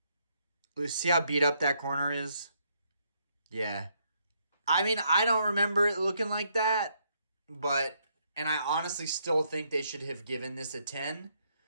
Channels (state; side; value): inverted; both; correlation -0.73